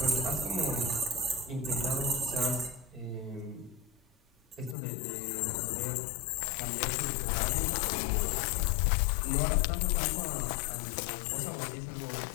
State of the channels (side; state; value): right; drops out; at 4.8 s